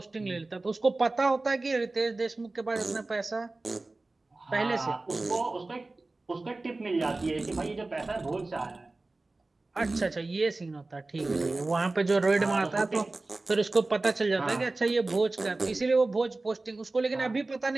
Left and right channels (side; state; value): left; quieter; 3.2 dB